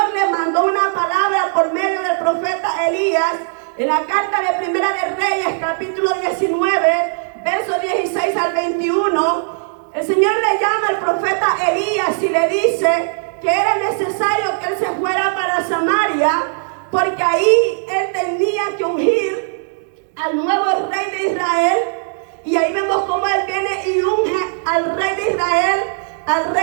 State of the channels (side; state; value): left; silent; 65 dB below the other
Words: le mandó una palabra por medio del profeta Elías en la carta de Primera de Reyes, capítulo 19, versos 16 al 21. El Señor le llama al profeta Elías y le dice que era necesario que él se fuera para Samaria, porque ahí él tenía que ungir al nuevo rey de Israel. Y ahí vemos cómo él viene y unge al rey de Israel, al